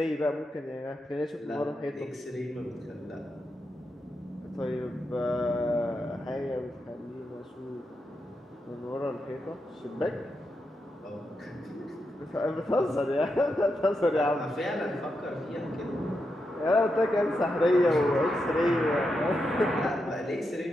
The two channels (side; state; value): both; normal; correlation 0.85